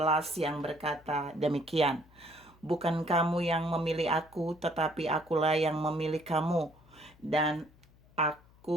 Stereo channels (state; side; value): noise; left; hum, 27 dB below the sound